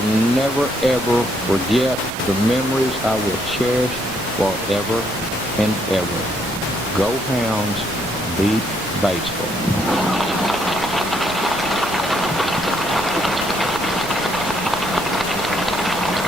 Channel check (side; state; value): both; normal; correlation 0.71